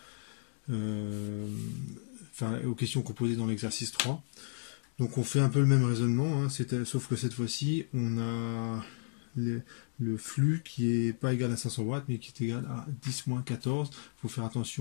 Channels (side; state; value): right; silent; digital silence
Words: aux questions qu'on posait dans l'exercice 3. Donc on fait un peu le même raisonnement, hein, sauf que cette fois-ci, on a le flux qui est pas égal à 500 watts, mais qui est égal à 10-14. Il faut faire